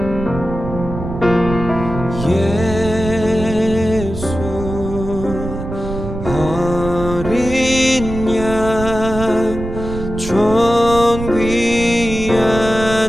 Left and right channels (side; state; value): right; noise; rumble, 8 dB below the sound